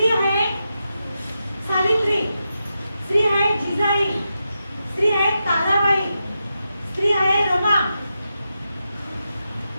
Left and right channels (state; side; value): inverted; both; correlation -0.88